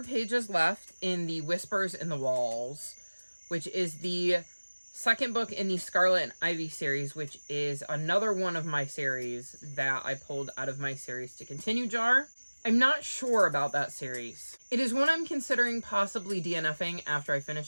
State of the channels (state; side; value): inverted; both; correlation -1.00